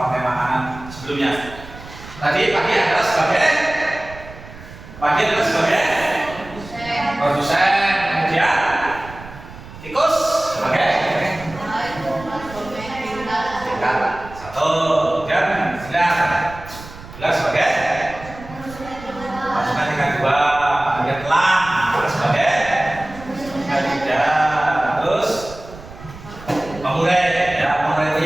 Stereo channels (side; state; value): right; noise; rumble, 16 dB below the sound